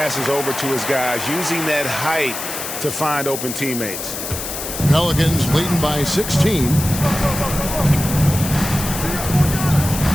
over to his guys, using that height to find open teammates. Pelicans leading by 16.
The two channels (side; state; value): left; noise; hiss, 6 dB below the sound